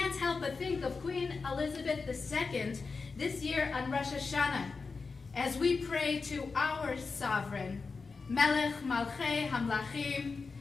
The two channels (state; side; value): quieter; right; 4.5 dB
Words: help but think of Queen Elizabeth II this year on Rosh Hashanah as we pray to our sovereign, Melech Malchei Hamlachim,